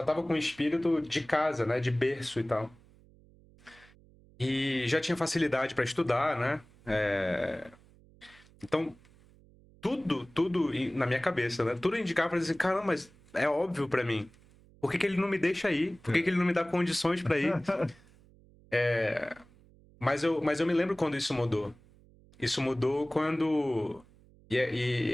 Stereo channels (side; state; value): right; noise; hum, 27 dB below the sound